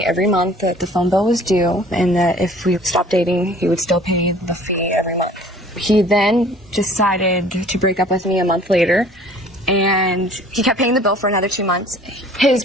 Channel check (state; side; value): normal; both; correlation 0.51